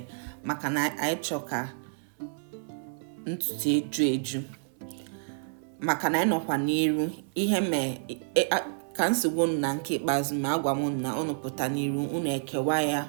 maka na anyị chọọ ka ntutu eju maka na anyị nọkwa n'iru ihe ka nsogbu na nke ikpeazụ ma agwa m na unu pụta n'iru unu ekewa ya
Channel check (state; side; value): silent; left; 58 dB below the other